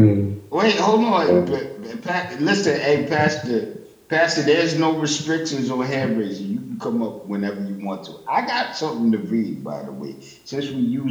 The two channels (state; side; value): identical; both; correlation 1.00